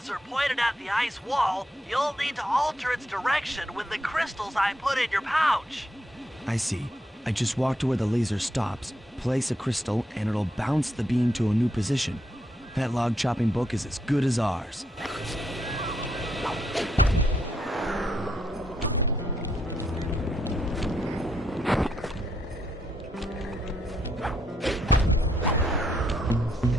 pointed at the ice wall, you'll need to alter its direction with the crystals I put in your pouch. I see. I just walk to where the laser stops, place a crystal, and it'll bounce the beam to a new position. That log chopping book is as good as ours.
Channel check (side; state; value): both; normal; correlation 0.77